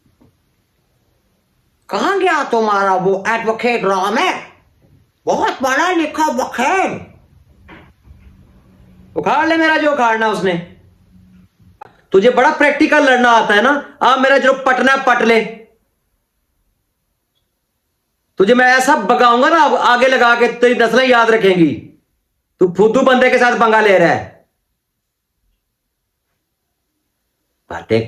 कहां गया तुम्हारा वो एडवोकेट रामे? बहुत बड़ा लिखा वकील। उखाड़ ले मेरा जो उखाड़ना उसने। तुझे बड़ा प्रैक्टिकल लड़ना आता है ना, मेरा जो पटना पट ले। तुझे मैं ऐसा बगाऊंगा ना, अब आगे लगा के तेरी नस्लें याद रखेंगी। तू फुद्दू बंदे के साथ पंगा ले रहा है,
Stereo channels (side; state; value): both; identical; correlation 1.00